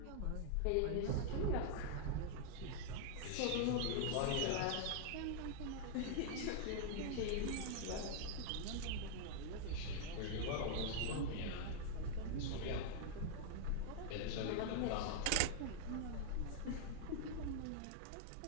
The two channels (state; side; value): different; both; correlation -0.01